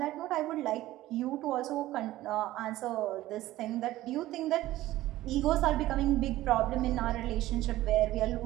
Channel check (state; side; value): quieter; left; 15.8 dB